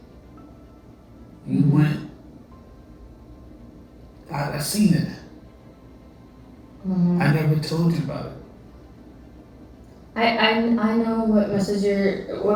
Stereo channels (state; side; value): identical; both; correlation 1.00